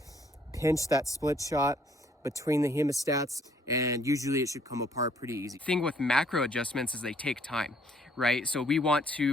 pinch that split shot between the hemostats, and usually it should come apart pretty easy. The thing with macro adjustments is they take time, right? So we want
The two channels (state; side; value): normal; both; correlation 0.63